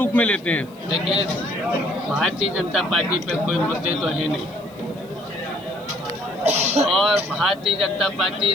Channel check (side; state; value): left; noise; hiss, 28 dB below the sound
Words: में लेते हैं? देखिए, भारतीय जनता पार्टी पे कोई मुद्दे तो है नहीं, और भारतीय जनता